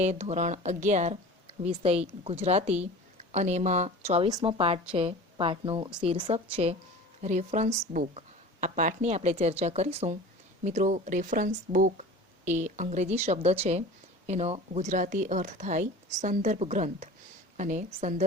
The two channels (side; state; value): both; normal; correlation 0.38